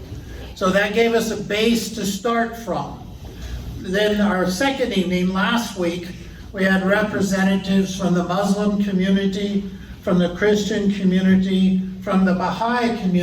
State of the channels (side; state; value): both; identical; correlation 1.00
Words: So that gave us a base to start from. Then our second evening, last week, we had representatives from the Muslim community, from the Christian community, from the Baha'i